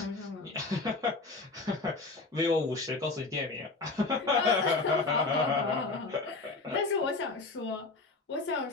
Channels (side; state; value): right; quieter; 3.6 dB